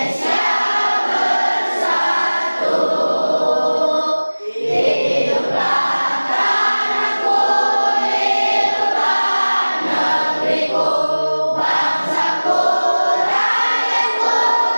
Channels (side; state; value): both; inverted; correlation -1.00